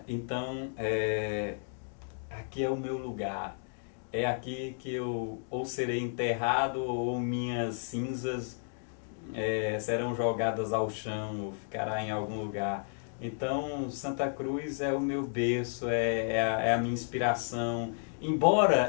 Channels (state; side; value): silent; right; digital silence